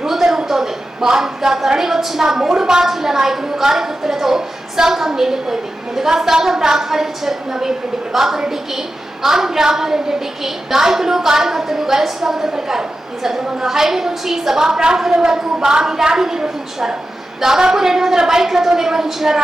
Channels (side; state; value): both; normal; correlation 0.92